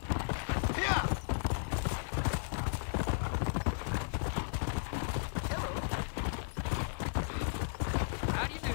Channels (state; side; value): silent; right; 55 dB below the other